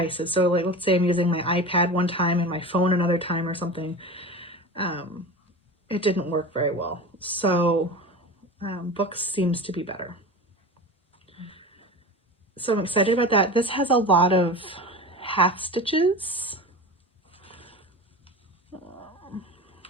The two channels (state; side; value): normal; both; correlation 0.31